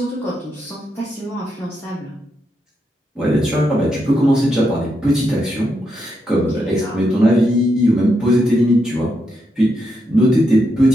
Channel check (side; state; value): both; normal; correlation 0.82